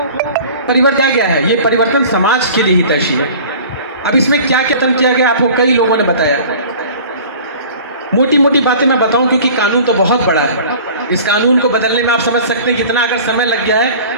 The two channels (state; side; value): inverted; both; correlation -0.43